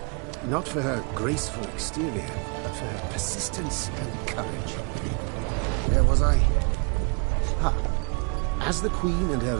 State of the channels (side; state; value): left; quieter; 33.3 dB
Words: Not for her graceful exterior, but for her persistence and courage. Where was I? As the Queen and her